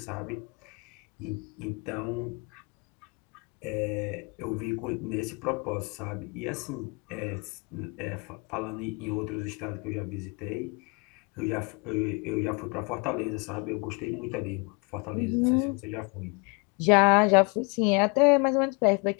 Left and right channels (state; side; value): quieter; right; 31.4 dB